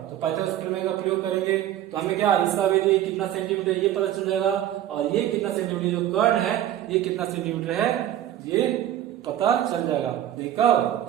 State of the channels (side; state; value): left; quieter; 11.9 dB